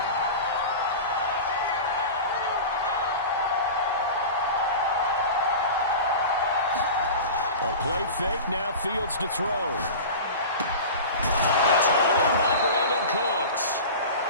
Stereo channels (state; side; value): inverted; both; correlation -0.32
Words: A play fake, now Fields to throw. It's hauled in by Brandon Cooks.